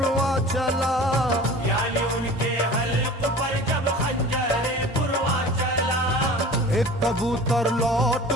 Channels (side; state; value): both; normal; correlation 0.41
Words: चला, यानी उनके हल्क पर जब खंजरे पुरवा चला, एक कबूतर लौट